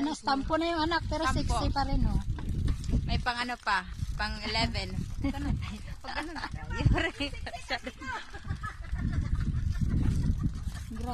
na stampo na yung anak, pero 60 pa rin, oh. May pang ano pa, pang 11.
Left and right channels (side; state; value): both; identical; correlation 1.00